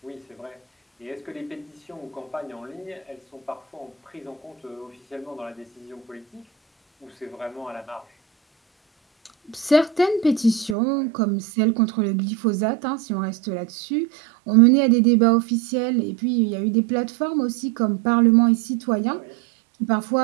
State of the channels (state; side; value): drops out; left; at 10.8 s